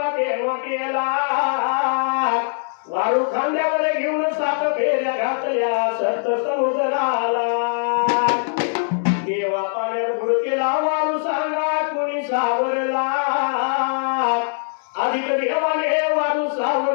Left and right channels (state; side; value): silent; right; digital silence